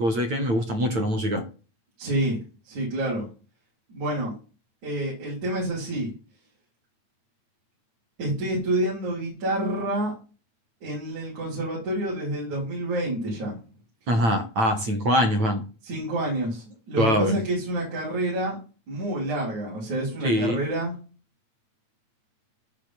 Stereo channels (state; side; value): late; left; 8.9 ms